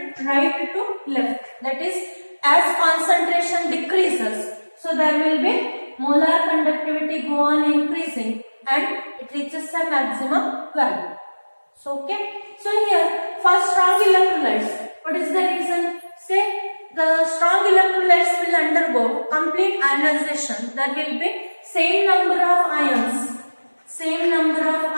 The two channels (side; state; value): both; inverted; correlation -1.00